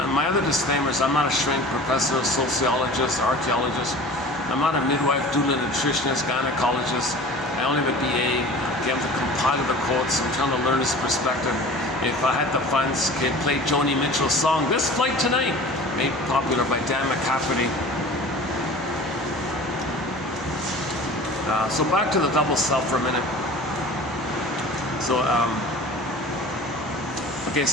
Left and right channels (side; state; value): both; normal; correlation 0.41